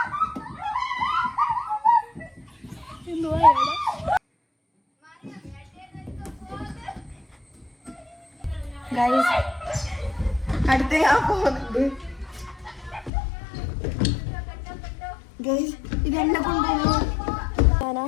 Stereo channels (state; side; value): drops out; right; at 13.1 s